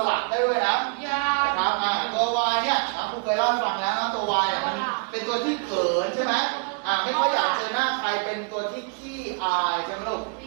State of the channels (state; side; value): quieter; left; 36.0 dB